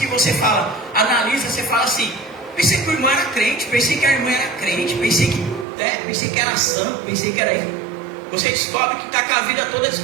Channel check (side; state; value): left; drops out; at 5.7 s